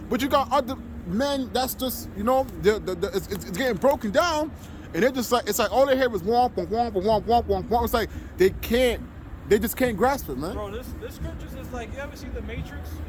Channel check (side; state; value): both; identical; correlation 1.00